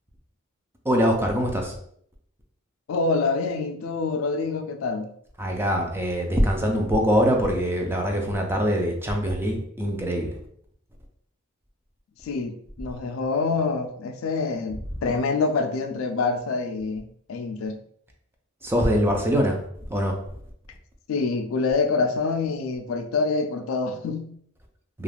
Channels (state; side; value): normal; both; correlation 0.32